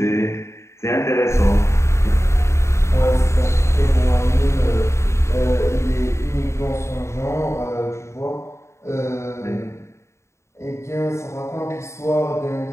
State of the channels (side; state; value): right; late; 0.14 ms